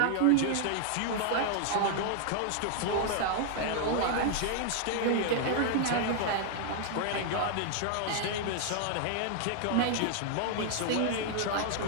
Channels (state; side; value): different; both; correlation -0.01